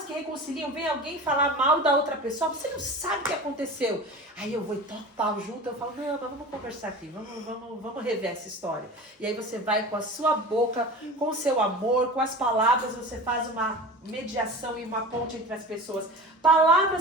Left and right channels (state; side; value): normal; both; correlation 0.34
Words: que reconciliam? Vem alguém falar mal da outra pessoa, você não sabe o que aconteceu. Aí eu vou e toco pau junto, eu falo, não, mas vamos conversar aqui, vamos rever essa história. E aí você vai com a sua boca, com o seu amor, com as palavras, você faz uma mediação e uma ponte entre as pessoas.